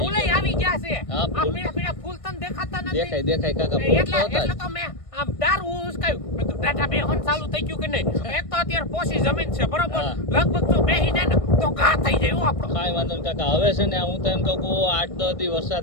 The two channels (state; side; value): late; right; 1.6 ms